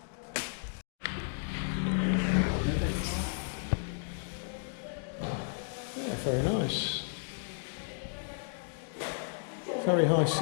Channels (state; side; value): silent; right; digital silence